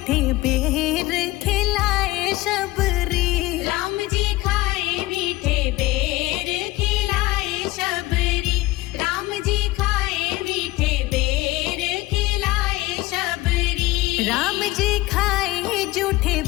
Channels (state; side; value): quieter; right; 18.9 dB